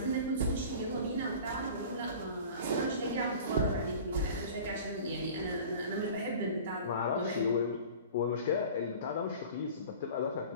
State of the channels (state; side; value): inverted; both; correlation -0.40